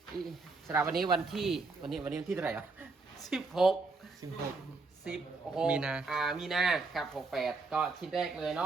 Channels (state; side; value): quieter; left; 3.9 dB